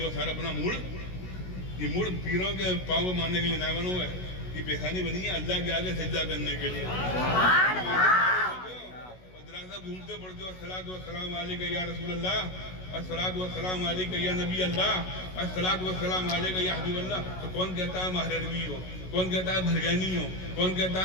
ہو سارا اپنا موڑ، یہ موڑ پیروں کے پاؤں کو مارنے کے لیے نہ بنو ہے، یہ پیشانی بنی ہے اللہ کے آگے سجدہ کرنے کے لیے۔ گھومتے پڑھتے ہو الصلاۃ والسلام علیک یا رسول اللہ، الصلاۃ والسلام علیک یا نبی اللہ، الصلاۃ والسلام علیک یا حبیب اللہ، تو کون کہتا ہے مہروی ہو، کون کہتا ہے بھرگانی ہو، کون کہتا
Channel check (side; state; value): right; late; 16 ms